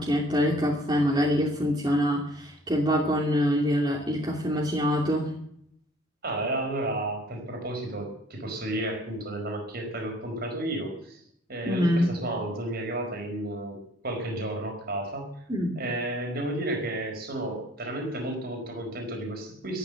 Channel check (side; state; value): both; normal; correlation 0.55